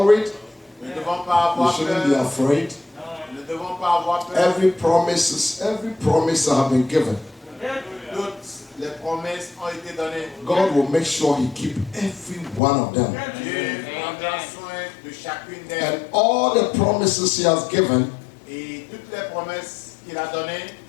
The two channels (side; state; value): right; drops out; at 12.6 s